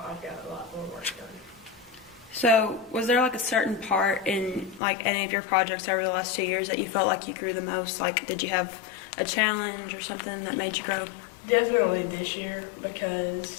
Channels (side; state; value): right; drops out; at 4.8 s